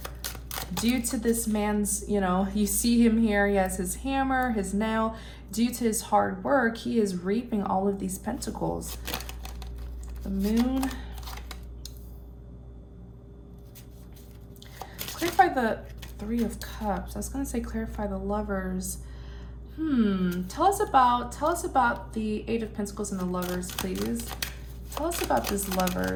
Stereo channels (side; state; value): both; identical; correlation 1.00